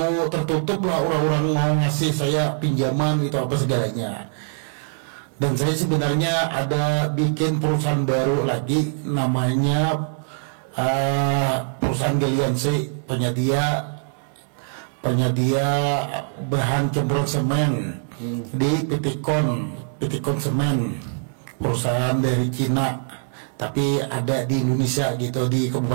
tertutup lah orang-orang mau ngasih saya pinjaman itu apa segalanya. Dan saya sebenarnya ada bikin perusahaan baru lagi, namanya perusahaan Galiansi, penyedia bahan campuran semen di Pitikon Semen, perusahaan dari Cina tapi ada di Indonesia gitu, di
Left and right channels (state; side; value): silent; left; 64 dB below the other